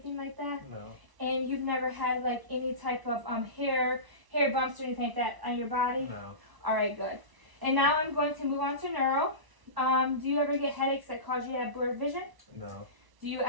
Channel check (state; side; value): late; left; 1.0 ms